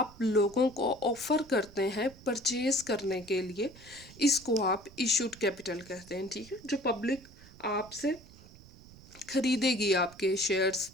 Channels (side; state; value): right; noise; rumble, 21 dB below the sound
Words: लोगों को ऑफर करते हैं परचेज करने के लिए, इसको आप इशूड कैपिटल कहते हैं। ठीक है, जो पब्लिक आपसे खरीदेगी, आपके शेयर्स,